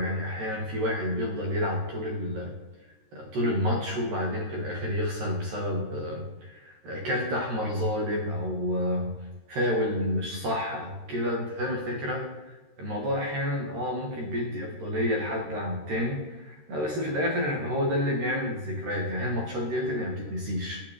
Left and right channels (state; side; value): late; left; 13 ms